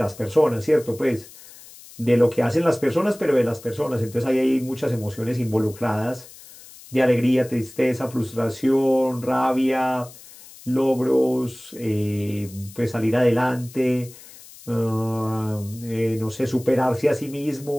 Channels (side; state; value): left; noise; hiss, 20 dB below the sound